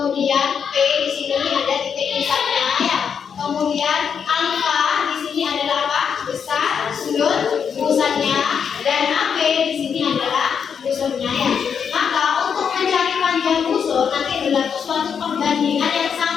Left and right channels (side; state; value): right; quieter; 7.0 dB